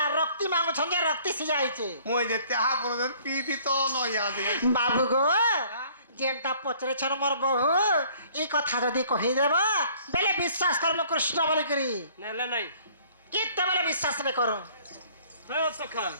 রক্তি মাগুছন যে রক্তি সিজাইছে ମୁଁ ଯେ ଚାହା ବନେଇ ପିଇବି ତ ନ ୟାଦ বাবু গো যেটা পচরেছন মোর বহু এই কথা যদি কহিদেব বেলে বিশ্বাস করব কৃষ্ণ বলি করি নেলে নাই কেতেবেলে বিশ্বাস নে করো হ্যাঁ সখা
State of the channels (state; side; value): inverted; both; correlation -0.56